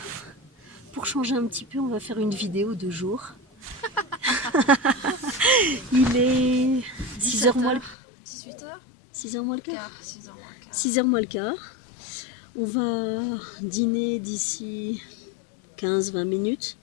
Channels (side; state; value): right; drops out; at 8.0 s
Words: Pour changer un petit peu, on va faire une vidéo de jour. Il est 6h moins le... 18h 6h moins le quart. 6h moins le quart. 6h moins le quart. On va dîner d'ici 15-20 minutes,